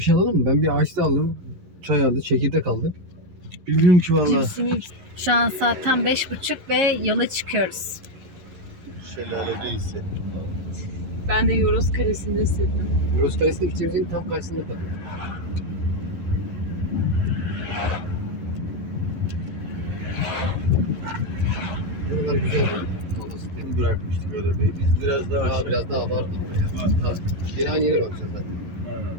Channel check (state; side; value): late; left; 11 ms